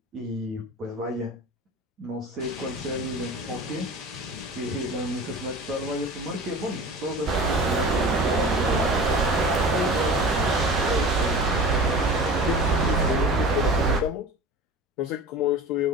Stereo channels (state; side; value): normal; both; correlation 0.36